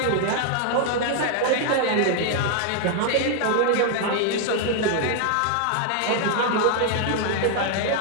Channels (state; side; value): different; both; correlation 0.00